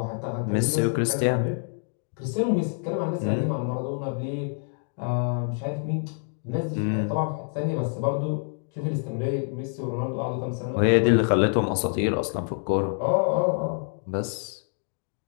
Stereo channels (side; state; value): right; silent; 60 dB below the other